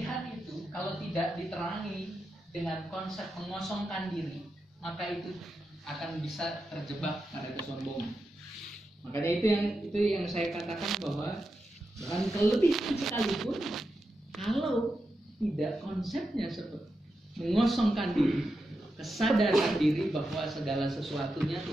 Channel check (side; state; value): both; normal; correlation 0.88